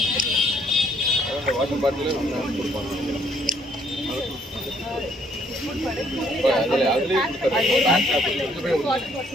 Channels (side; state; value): both; normal; correlation 0.66